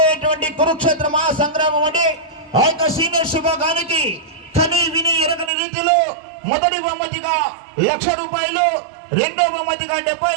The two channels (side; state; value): left; drops out; at 5.5 s